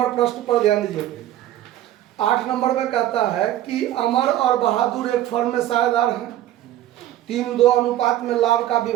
प्रश्न पर ध्यान दीजिए। 8 नंबर में कहता है कि अमर और बहादुर एक फर्म में साझेदार हैं, 3-2 अनुपात में लाभ का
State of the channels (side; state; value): left; quieter; 13.1 dB